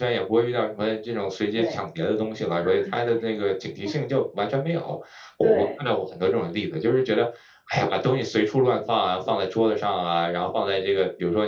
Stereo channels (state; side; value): identical; both; correlation 1.00